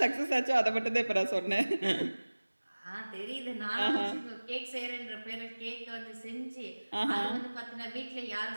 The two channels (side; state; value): both; inverted; correlation -1.00